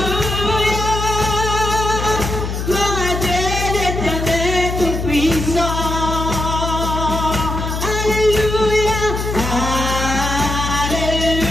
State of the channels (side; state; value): left; noise; hum, 3 dB below the sound